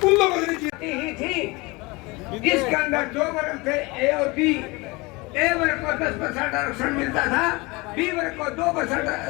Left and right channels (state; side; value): quieter; right; 24.7 dB